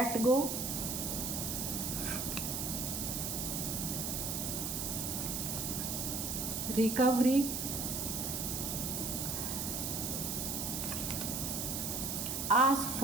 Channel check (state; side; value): noise; right; hiss, 2 dB below the sound